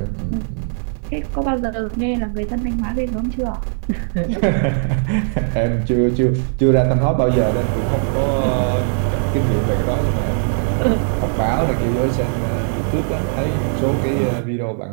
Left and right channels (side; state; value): left; silent; digital silence